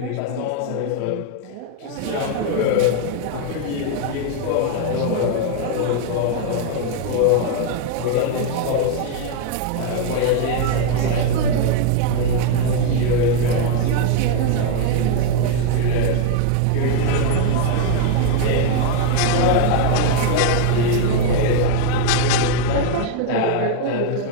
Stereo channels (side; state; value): both; different; correlation 0.00